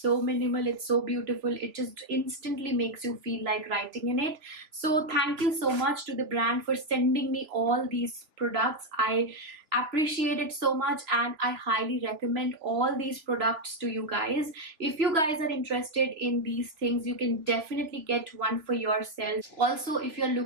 minimal, it's so beautiful, it just instantly makes you feel like writing in it. So thank you so much to the brand for sending me all these products. I appreciate it so much, and I highly recommend all these products to you guys. If you guys are interested in these things, you can definitely get one for yourself. Also, if you're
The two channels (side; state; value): left; late; 3.2 ms